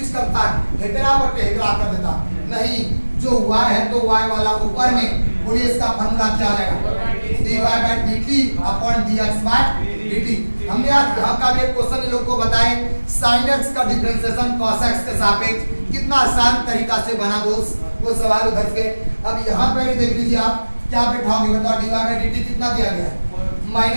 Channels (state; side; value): inverted; both; correlation -1.00